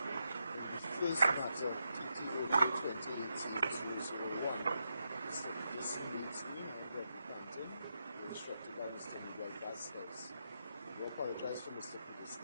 First matter, TTOJ2018-201. Mr. Dismissed Greg Quantum, instructed by Mr. Miguel Vasquez. We apologize for Mr.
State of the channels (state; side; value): inverted; both; correlation -0.84